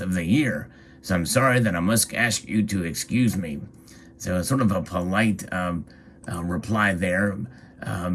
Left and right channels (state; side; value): identical; both; correlation 1.00